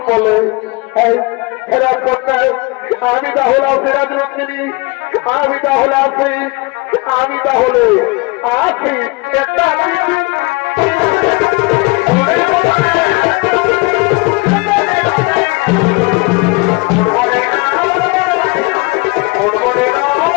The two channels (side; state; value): right; quieter; 26.7 dB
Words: বলে ফেরার করতে আমি তাহলে ফেরাজ রঙ্গিনী, আমি তাহলে আছি, আমি তাহলে আছি একটা